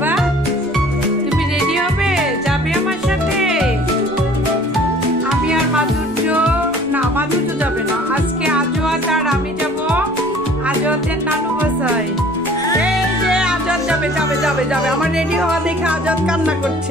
তুমি রেডি হবে, যাবে আমার সাথে? আমি আর মাধুর্য, না মাধুর্য যাবে না, আজকে আজাদ আর আমি যাব আজাদের নানু বাসায়। এই যে আজাদ যাবে যাবে যাবে যাবে, আমার রেডি হওয়া দেখে আজাদ কান্না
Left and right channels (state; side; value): noise; right; rumble, 25 dB below the sound